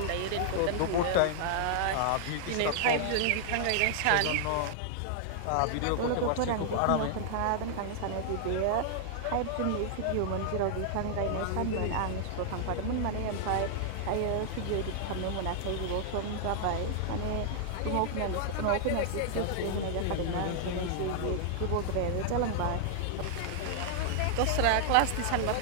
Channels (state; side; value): different; both; correlation -0.01